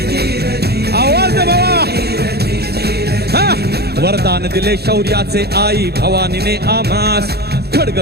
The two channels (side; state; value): left; late; 0.47 ms